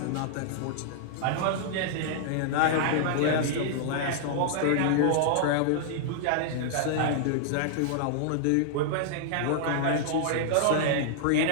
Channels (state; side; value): different; both; correlation -0.01